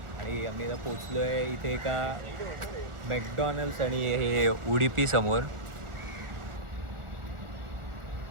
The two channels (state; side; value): late; left; 1.4 ms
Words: आणि आम्ही आता पोचलो आहे इथे एका मॅकडॉनल्ड्स आणि हे उडुपी समोर